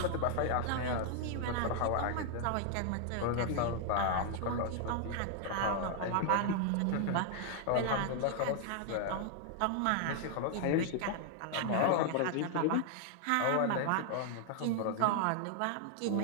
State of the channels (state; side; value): different; both; correlation 0.00